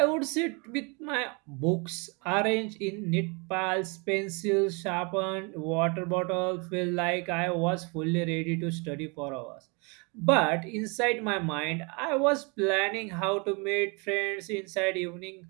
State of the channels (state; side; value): quieter; left; 31.3 dB